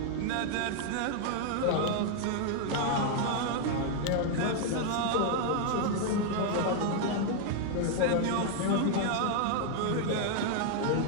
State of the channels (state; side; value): different; both; correlation 0.00